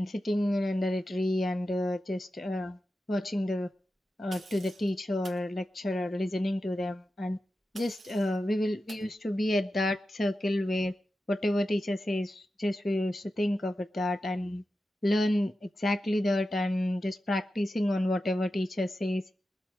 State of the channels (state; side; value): normal; both; correlation 0.91